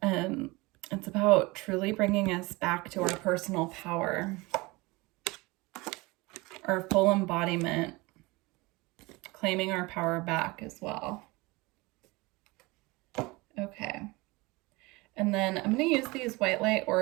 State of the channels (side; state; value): left; quieter; 23.5 dB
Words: It's about truly bringing us back to our personal power, our full embodiment, claiming our power back as well. Okay. And then I'm going to use these white light